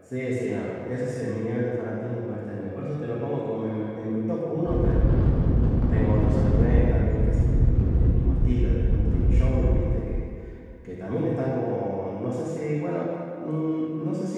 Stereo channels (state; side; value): identical; both; correlation 1.00